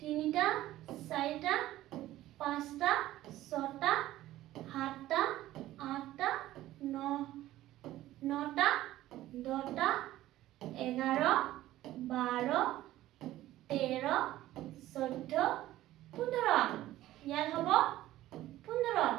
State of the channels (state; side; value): quieter; left; 15.0 dB